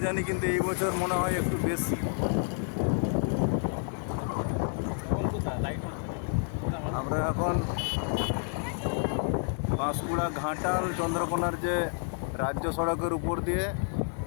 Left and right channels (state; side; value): silent; right; 58 dB below the other